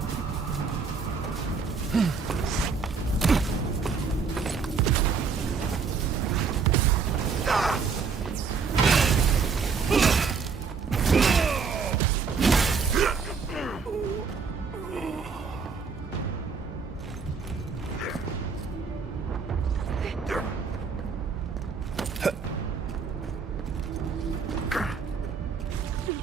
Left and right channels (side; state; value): left; quieter; 5.4 dB